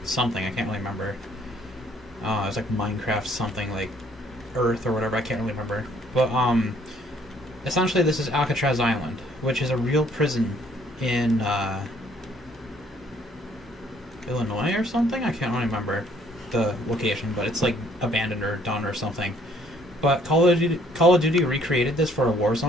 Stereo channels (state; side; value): normal; both; correlation 0.62